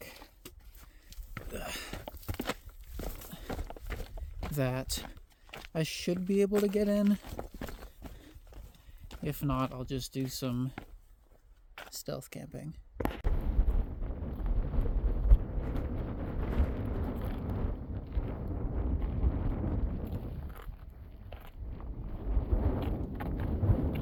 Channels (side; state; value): both; identical; correlation 1.00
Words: that I should be able to get in. If not, I'll just do some stealth camping.